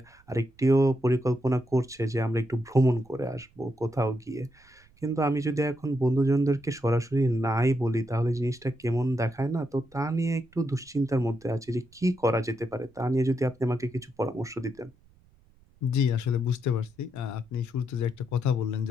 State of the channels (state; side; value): noise; right; rumble, 30 dB below the sound